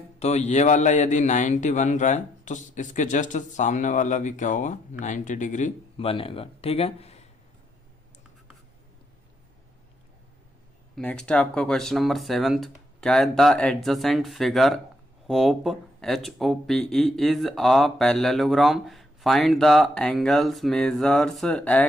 तो ये वाला यदि 90 बन रहा है तो इसके जस्ट सामने वाला भी क्या होगा, 90 डिग्री बनेगा, ठीक है। नेक्स्ट है आपका क्वेश्चन नंबर 7, क्या है, the adjacent figure hope HOPE is a parallelogram. Find the angles, measures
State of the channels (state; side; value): normal; both; correlation 0.75